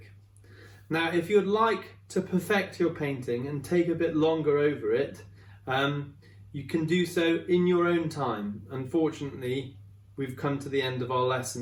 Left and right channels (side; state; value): both; identical; correlation 1.00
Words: Now, if you'd like to perfect your painting and take a bit longer over it, you can do so in your own time. Unfortunately, we've come to the end of our